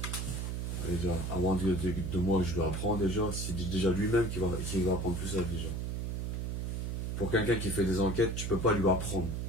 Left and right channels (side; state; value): right; noise; hum, 2 dB below the sound